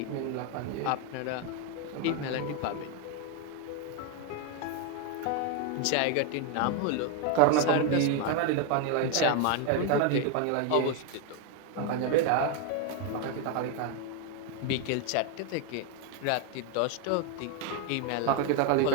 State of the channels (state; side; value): different; both; correlation 0.01